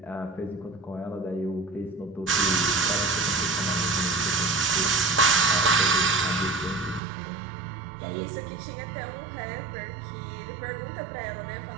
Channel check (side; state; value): left; drops out; at 7.0 s